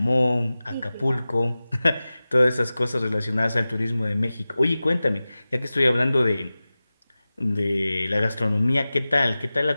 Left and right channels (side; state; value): both; inverted; correlation -0.96